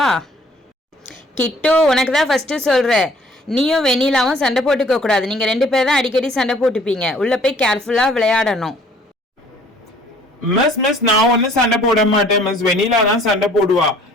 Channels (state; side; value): normal; both; correlation 0.56